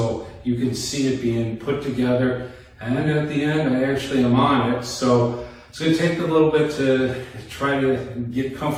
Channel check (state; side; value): identical; both; correlation 1.00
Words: you can see it being put together. And then at the end, I actually am on it. So it's going to take a little bit to try to get